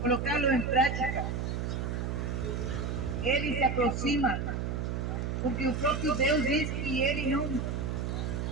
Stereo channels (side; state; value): right; noise; hum, 2 dB below the sound